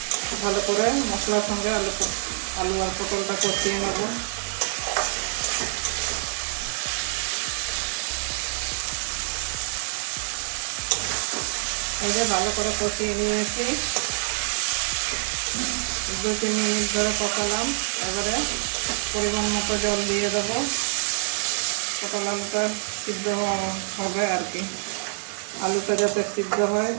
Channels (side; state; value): left; silent; 61 dB below the other